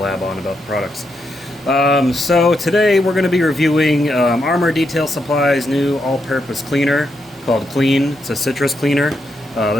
on about the products. So today we're going to be reviewing Armour Detail Supply's new all-purpose cleaner called Clean. It's a citrus cleaner.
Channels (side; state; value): both; normal; correlation 0.81